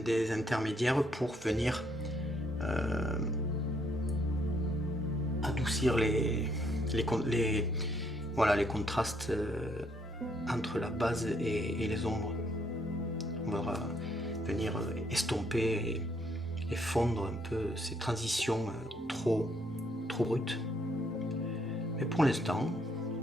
intermédiaires pour venir adoucir les contrastes entre la base et les ombres. On va venir estomper et fondre un peu ces transitions trop brutes. Mais pour l'instant,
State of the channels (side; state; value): both; normal; correlation 0.70